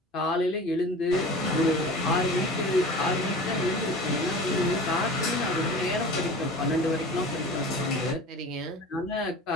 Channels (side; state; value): both; normal; correlation 0.38